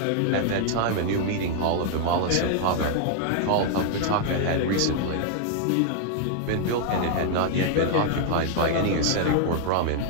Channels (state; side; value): different; both; correlation 0.00